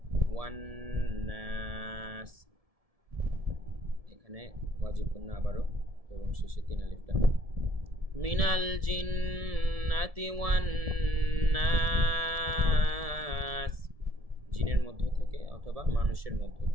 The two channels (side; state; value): left; late; 1.7 ms